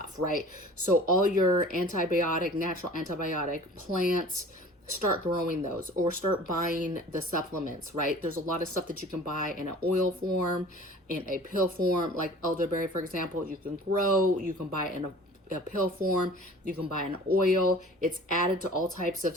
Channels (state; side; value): normal; both; correlation 0.45